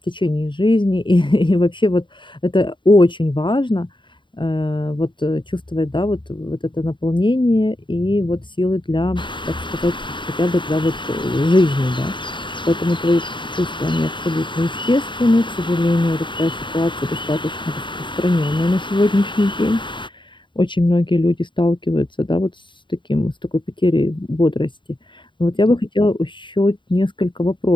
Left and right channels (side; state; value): right; late; 0.23 ms